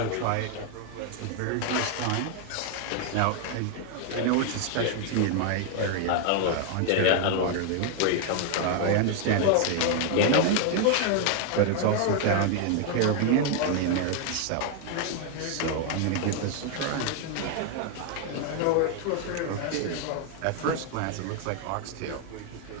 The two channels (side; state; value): both; different; correlation 0.00